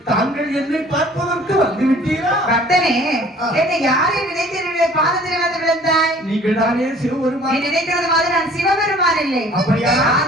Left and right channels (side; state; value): both; normal; correlation 0.52